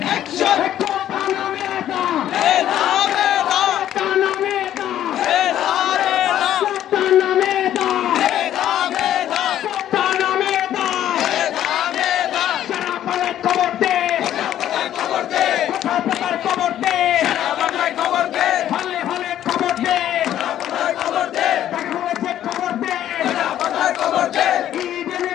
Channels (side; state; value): right; quieter; 11.6 dB